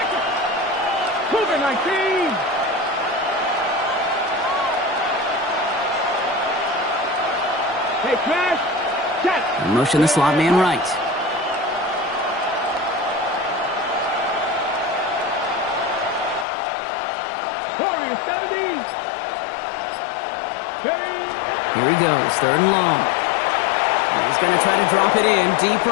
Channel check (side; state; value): right; drops out; at 16.4 s